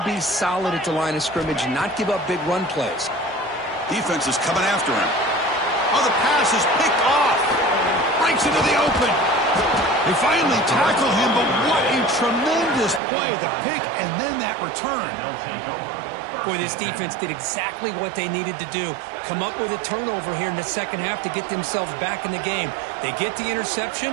be solid at the line of scrimmage, not give up big run plays. Defense is coming after him. Oh, the pass is picked off. Breaks into the open. They finally tackle him, but what a tremendous play. The pick and then that return. Boy, this defense did exactly what they needed to do. Come up with a turnover here in the second half to get themselves back in the game. They get the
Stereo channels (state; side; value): drops out; left; at 13.0 s